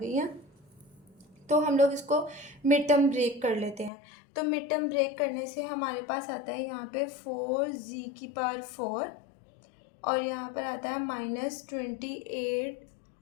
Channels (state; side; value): drops out; right; at 3.9 s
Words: हैं। तो हम लोग इसको मिड टर्म ब्रेक कर लेते हैं। तो मिड टर्म ब्रेक करने से हमारे पास आता है यहाँ पे 4z⁴ और यहाँ पर आता है